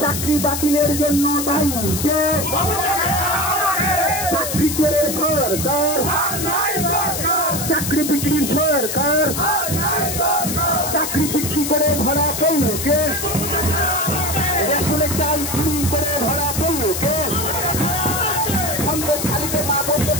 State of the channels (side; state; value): left; noise; hiss, 4 dB below the sound